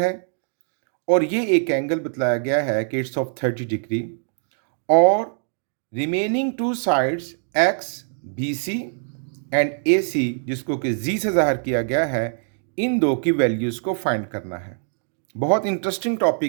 और ये एक एंगल बतलाया गया है कि इट्स ऑफ 30 डिग्री और remaining two sides X B C and A C जिसको कि जी से ज़ाहिर किया गया है, इन दो की वैल्यूज़ को फाइंड करना है। बहुत इंटरेस्टिंग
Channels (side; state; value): left; silent; digital silence